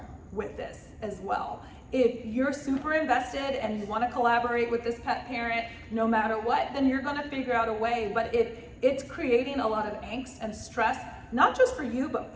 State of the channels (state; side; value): identical; both; correlation 1.00